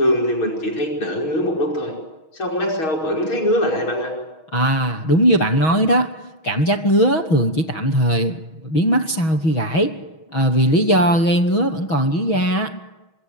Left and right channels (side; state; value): right; late; 6.3 ms